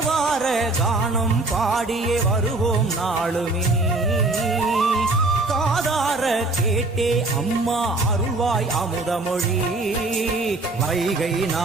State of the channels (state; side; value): quieter; left; 3.0 dB